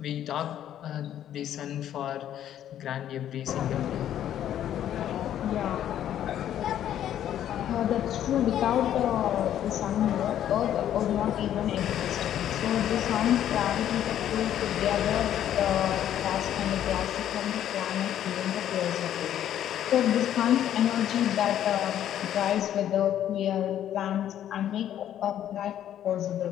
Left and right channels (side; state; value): right; quieter; 11.0 dB